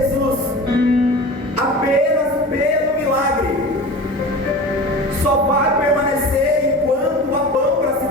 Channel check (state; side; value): normal; both; correlation 0.34